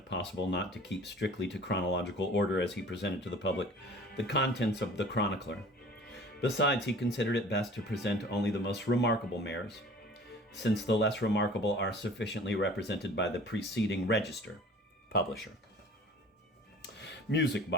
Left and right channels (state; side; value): normal; both; correlation 0.46